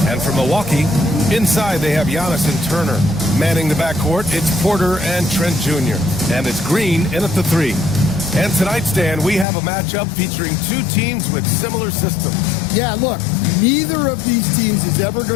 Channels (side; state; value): right; drops out; at 9.5 s